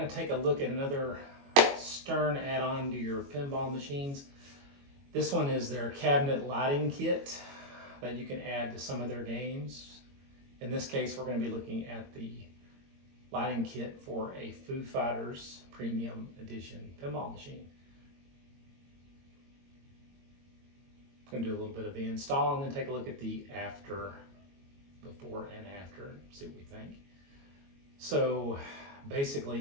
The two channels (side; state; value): left; late; 22 ms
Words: to take a look at another Stern add-on to your pinball machines. This one is their cabinet lighting kit that you can add to some of their games. In this case, we're going to be looking at the lighting kit for a Foo Fighters Premium Edition pinball machine. I'm going to do a little bit of the install and then take a look at the before and after, see what we think. So